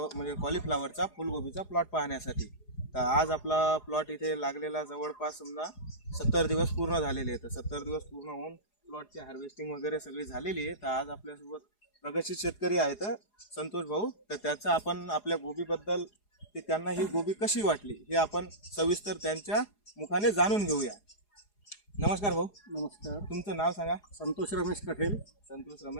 कॉलीफ्लावरचा फुलगोबीचा प्लॉट पाहण्यासाठी। तर आज आपला प्लॉट इथे लागलेला जवळपास समजा 70 दिवस पूर्ण झालेले आहेत। 70 दिवस पूर्ण होऊन प्लॉटची हार्वेस्टिंग वगैरे सगळी झालेली आहे। तर आज आपल्यासोबत प्रगतशील शेतकरी आहेत संतोष भाऊ। तर त्याचा आपण आपल्या गोबीबद्दल ते त्यांना ही गोबी कशी वाटली हे आपण सविस्तर त्यांच्या मुखाने जाणून घेऊया। नमस्कार भाऊ। नमस्कार। तुमचं नाव सांगा। संतोष रमेश कठेल। संतोष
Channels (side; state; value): right; late; 4.8 ms